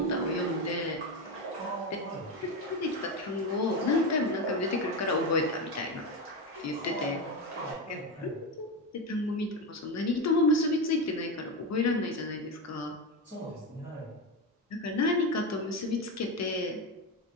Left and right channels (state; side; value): normal; both; correlation 0.15